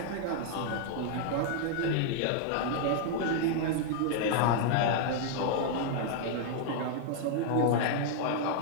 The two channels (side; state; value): both; different; correlation -0.01